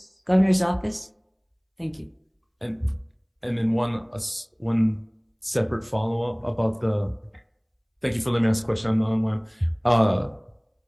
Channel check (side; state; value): both; identical; correlation 1.00